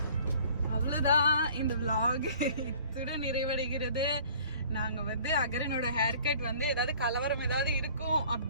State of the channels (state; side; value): inverted; both; correlation -0.52